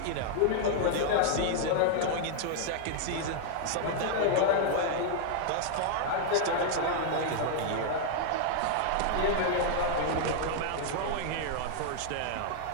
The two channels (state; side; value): different; both; correlation -0.01